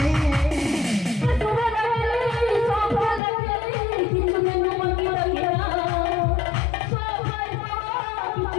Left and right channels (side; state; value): right; drops out; at 3.2 s